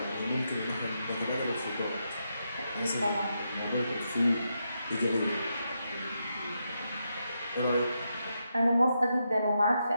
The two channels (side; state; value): both; inverted; correlation -0.83